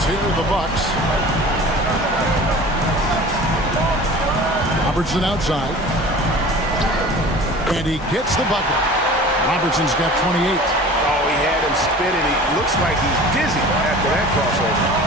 here, the Bucks. Robertson outside. And he gets the bucket. Robertson's got 28. Oh, he had him spinning. He looks like he's dizzy after that crossover.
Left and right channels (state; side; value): normal; both; correlation 0.41